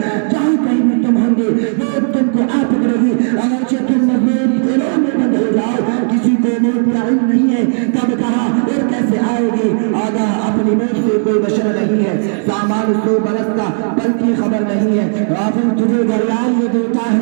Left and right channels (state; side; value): silent; left; digital silence